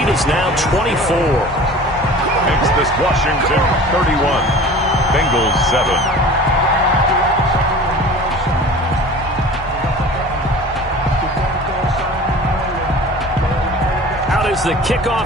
is now 24. Makes this Washington 31. Bengals 7. Is the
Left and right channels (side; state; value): both; normal; correlation 0.41